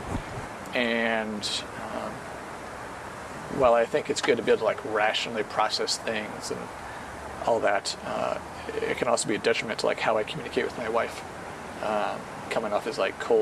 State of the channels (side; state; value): both; identical; correlation 1.00